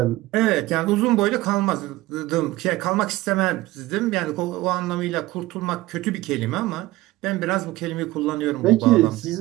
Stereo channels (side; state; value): left; quieter; 18.1 dB